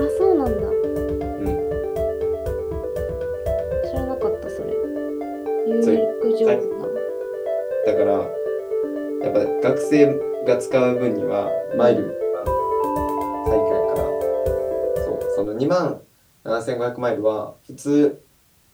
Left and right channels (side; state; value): both; identical; correlation 1.00